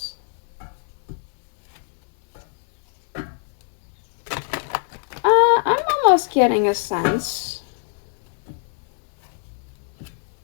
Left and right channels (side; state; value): right; silent; 64 dB below the other